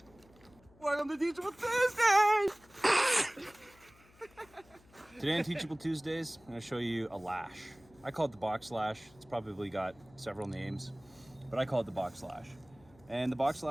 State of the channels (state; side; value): noise; left; hum, 27 dB below the sound